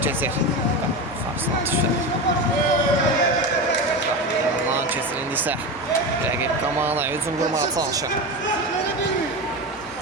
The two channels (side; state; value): both; normal; correlation 0.22